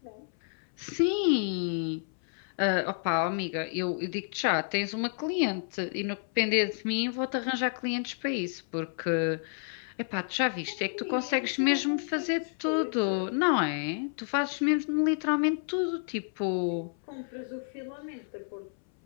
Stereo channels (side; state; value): right; silent; 58 dB below the other